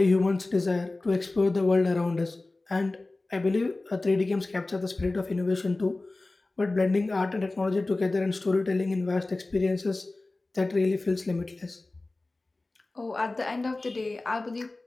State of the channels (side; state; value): right; quieter; 3.1 dB